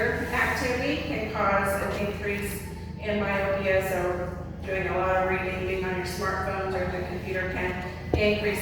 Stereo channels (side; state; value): both; identical; correlation 1.00